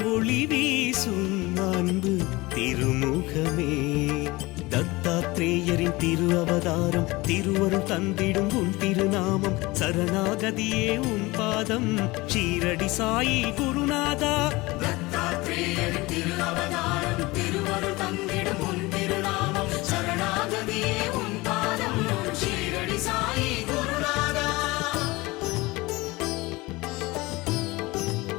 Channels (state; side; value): quieter; right; 21.9 dB